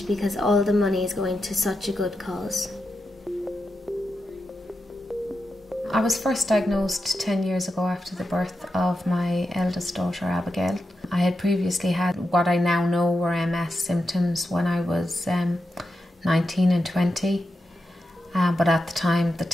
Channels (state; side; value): normal; both; correlation 0.88